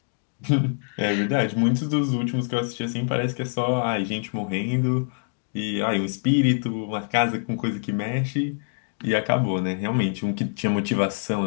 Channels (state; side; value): silent; right; 62 dB below the other